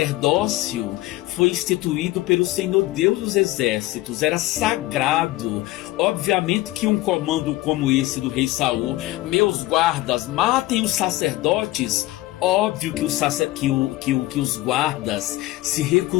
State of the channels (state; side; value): quieter; right; 18.1 dB